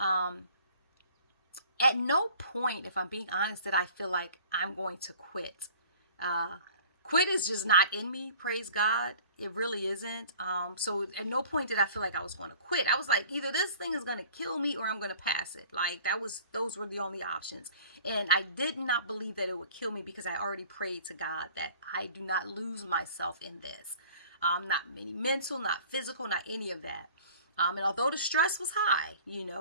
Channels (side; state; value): both; inverted; correlation -0.49